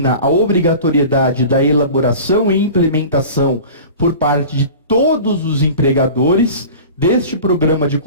a obrigatoriedade da elaboração e implementação por parte de todos os empregadores deste Programa de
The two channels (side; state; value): both; inverted; correlation -0.38